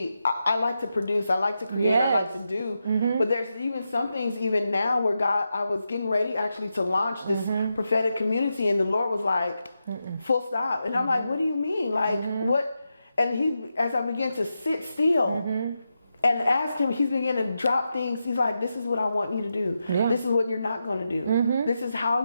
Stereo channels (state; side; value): inverted; both; correlation -0.88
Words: I like to produce, I like to create, I like to do. But there's even some things even now where I was getting ready actually to launch this prophetic community, and the Lord was like, full stop. And I'm like, what do you mean? Like, what? And as I began to sit still, and ask him, he's beginning to drop things. He's like, this is what I want you to do. Yeah. This is what you're not going to do. This is how